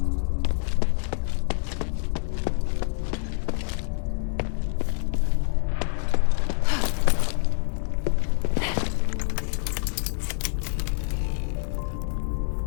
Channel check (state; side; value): silent; right; digital silence